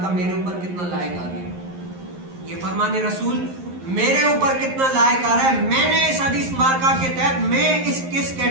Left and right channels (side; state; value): left; late; 11 ms